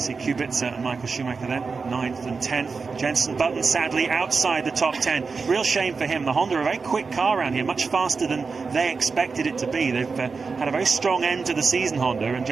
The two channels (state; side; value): quieter; left; 4.7 dB